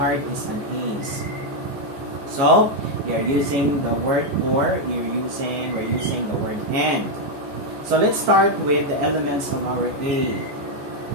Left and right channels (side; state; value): left; late; 14 ms